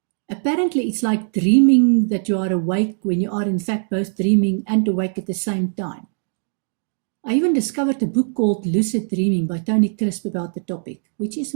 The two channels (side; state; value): left; silent; digital silence